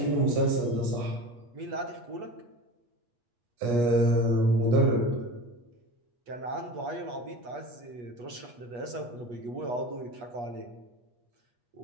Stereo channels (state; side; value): late; left; 8.3 ms